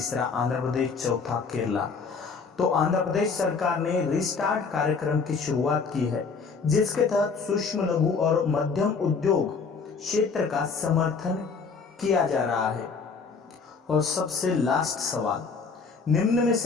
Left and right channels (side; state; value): right; quieter; 5.0 dB